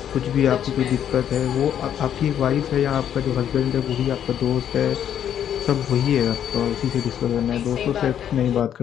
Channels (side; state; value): right; quieter; 9.7 dB